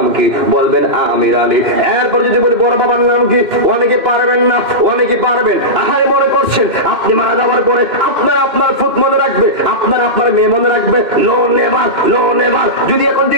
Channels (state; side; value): late; left; 2.6 ms